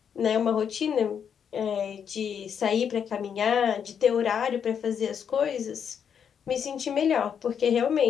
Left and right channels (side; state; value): right; quieter; 7.7 dB